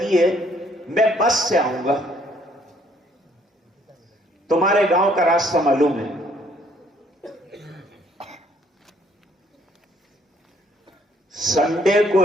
ہے، میں بس سے آؤں گا، تمہارے گاؤں کا راستہ معلوم ہے۔ سنڈے کو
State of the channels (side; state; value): both; normal; correlation 0.64